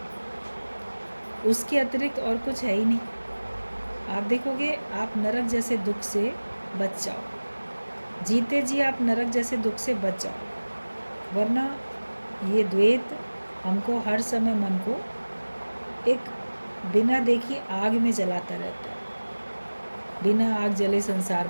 उसके अतिरिक्त और कुछ है ही नहीं। आप देखोगे आप नरक जैसे दुख से बच जाओ, जीते जी आप नरक जैसे दुख से बच जाओ। वरना ये द्वैत हमको हर समय मन को एक बिना देखी आग में जलाता रहता है। बिना आग जले संसार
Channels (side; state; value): both; inverted; correlation -1.00